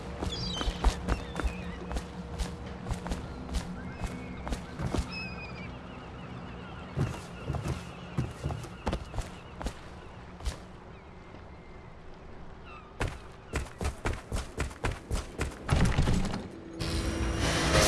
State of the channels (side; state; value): both; identical; correlation 1.00